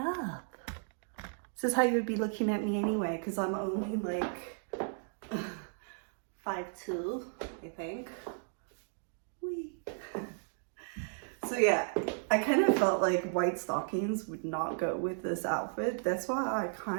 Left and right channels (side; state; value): left; silent; digital silence